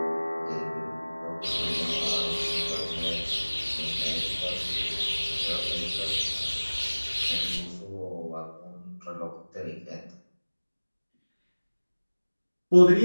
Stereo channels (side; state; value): both; inverted; correlation -1.00